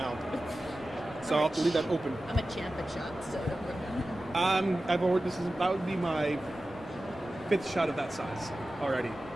So I'll have to leave that open. I'm a champ at shots, so don't worry. That would be my 5th shot of that size already.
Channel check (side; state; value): both; normal; correlation 0.95